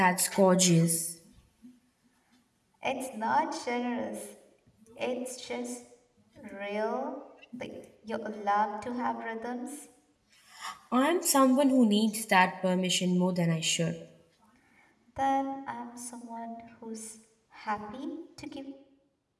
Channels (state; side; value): identical; both; correlation 1.00